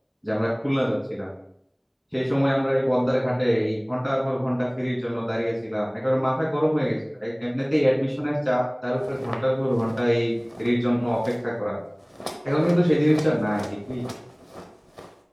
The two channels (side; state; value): both; identical; correlation 1.00